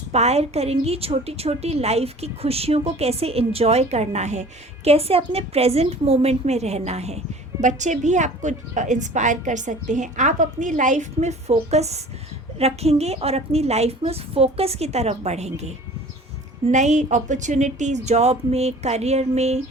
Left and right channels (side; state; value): both; normal; correlation 0.45